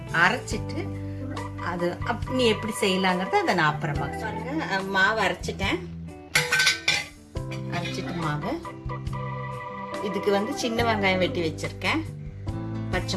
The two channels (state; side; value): identical; both; correlation 1.00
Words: அரைச்சிட்டு அது நீ எப்படி செய்யலாங்கிறத அதை நான் அப்புறமா பாருங்க. மாவு அரைச்சிட்டேன். அரைச்சிட்டு மாவு இதுக்கு சின்ன வெங்காயம் வெட்டி வச்சிருக்கேன், பச்சை